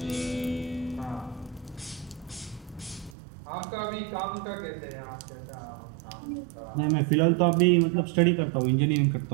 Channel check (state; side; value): drops out; left; at 3.2 s